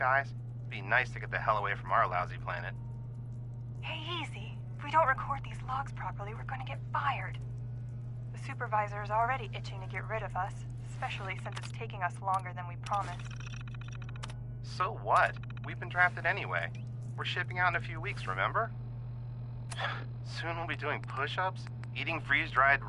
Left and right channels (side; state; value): both; identical; correlation 1.00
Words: Be nice to get the hell away from our lousy planet. Hey, easy. If we don't record these logs properly, we're gonna get fired. The supervisor is already itching to get rid of us, especially since it's taking us longer than we promised. So what? We've been drafted anyway. We're shipping out in a few weeks, remember? Soon we'll be doing push-ups, eating freeze-dried